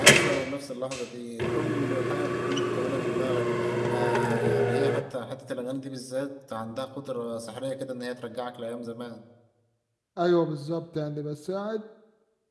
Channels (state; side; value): identical; both; correlation 1.00